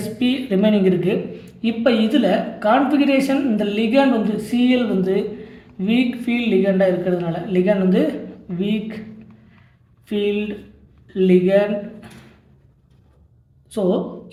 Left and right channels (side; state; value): both; identical; correlation 1.00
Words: SP ரிமைனிங் இருக்குது. இப்போ இதில் கான்ஃபிகரேஷன் இந்த லிகண்ட் வந்து Cl வந்து வீக் ஃபீல்ட் லிகண்டாக இருக்கிறதுனால லிகண்ட் வந்து வீக் ஃபீல்ட் லிகண்ட். ஸோ